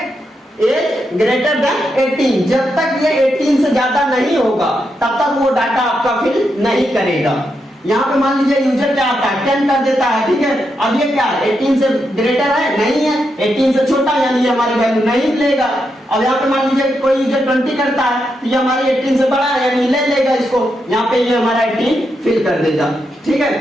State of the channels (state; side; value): normal; both; correlation 0.83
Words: एज ग्रेटर देन 18। जब तक ये 18 से ज्यादा नहीं होगा तब तक वो डाटा आपका फिल नहीं करेगा। यहाँ पे मान लीजिए यूजर क्या आता है, 10 कर देता है, ठीक है। अब ये क्या है, 18 से ग्रेटर है, नहीं है, 18 से छोटा, यानी ये हमारी वैल्यू नहीं लेगा। अब यहाँ पे मान लीजिए कोई यूजर 20 करता है, तो ये हमारी 18 से बड़ा है, यानी ले लेगा इसको, यहाँ पे ये हमारा 18 फिल कर देगा, ठीक